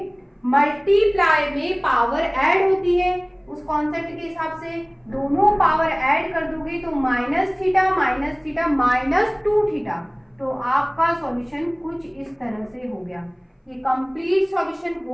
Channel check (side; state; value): both; identical; correlation 1.00